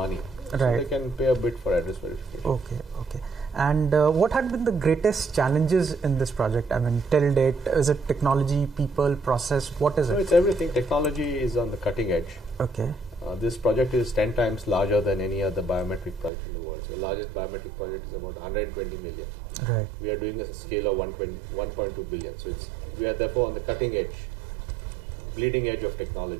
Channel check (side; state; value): left; drops out; at 16.3 s